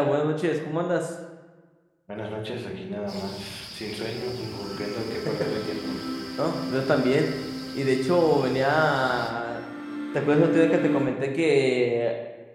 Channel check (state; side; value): identical; both; correlation 1.00